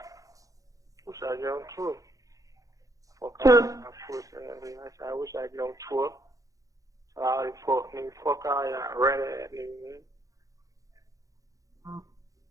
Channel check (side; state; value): left; late; 0.17 ms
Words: Wish I get on tour. Fuck all that pussy ass nigga. I wish I get on tour. All these fuck niggas. Fuck all y'all rat ass niggas, man.